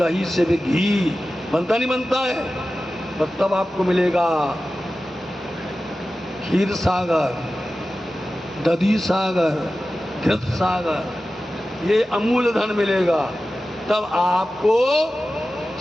से भी घी बनता नहीं बनता है? और तब आपको मिलेगा क्षीर सागर, दधी सागर, घृत सागर, ये अमूल धन मिलेगा। तब आपको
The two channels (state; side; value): normal; both; correlation 0.94